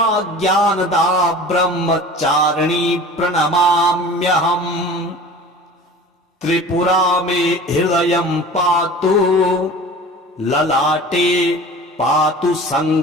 ज्ञानदा ब्रह्मचारिणी प्रणमाम्यहम् त्रिपुरा मे हृदयं पातु ललाटे पातु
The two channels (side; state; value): both; normal; correlation 0.40